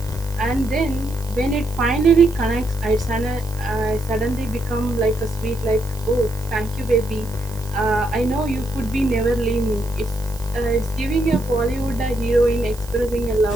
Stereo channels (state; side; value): noise; right; hiss, 19 dB below the sound